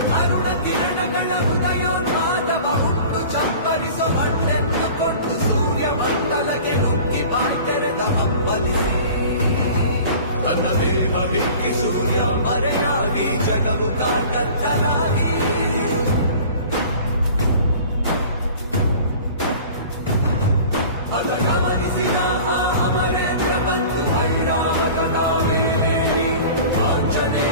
ಅರುಣ ಕಿರಣಗಳ ಉದಯೋನ್ಮಾದವ ಹುಟ್ಟು ಚಪ್ಪರಿಸೋ ಹಣ್ಣೆಂದುಕೊಂಡು ಸೂರ್ಯ ಮಂಡಲಕ್ಕೆ ನುಗ್ಗಿ ಬಾಯ್ತೆರೆದ ಹಂಬಲಿಸಿ ತನ್ನ ದೇಹ ಬಿಕ್ಕಿ ಸೂರ್ಯ ಮರೆಯಾಗಿ ಜಗವು ಕತ್ತಲಾಗಿ ಅದ ಗಮನಿಸಿದ ಆ ಅಮರೇಂದ್ರ ಬಂದು ಐರಾವತದ ಮೇಲೇರಿ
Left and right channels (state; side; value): inverted; both; correlation -0.42